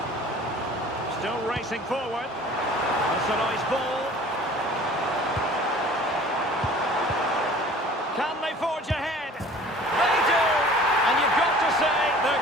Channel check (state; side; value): normal; both; correlation 0.47